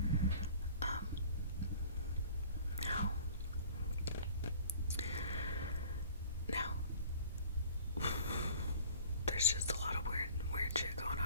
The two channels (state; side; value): inverted; both; correlation -0.46